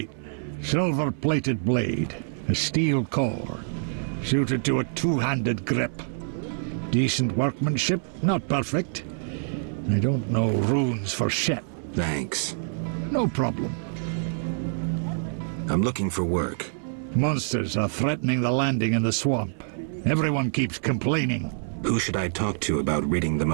Silver-plated blade. A steel core. Suited to a two-handed grip. Decent workmanship, not perfect. I don't know runes for shit. Thanks. No problem. I'm looking for work. Monsters are threatening the landing in the swamp. Everyone keeps complaining. Who should I talk to about ridding them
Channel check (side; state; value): left; silent; 61 dB below the other